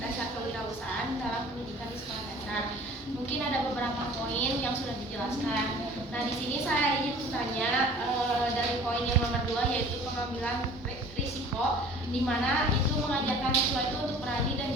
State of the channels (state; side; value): normal; both; correlation 0.47